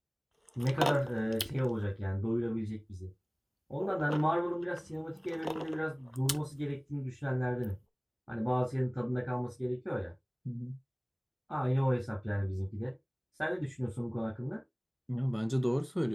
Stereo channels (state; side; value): identical; both; correlation 1.00